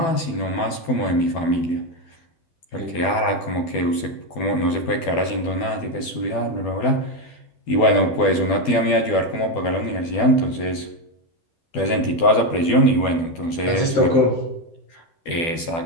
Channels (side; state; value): right; late; 12 ms